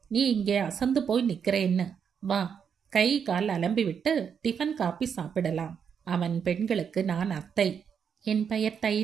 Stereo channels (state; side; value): quieter; left; 7.2 dB